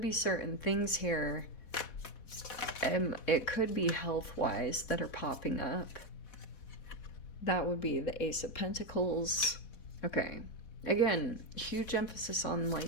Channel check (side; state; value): right; late; 4.1 ms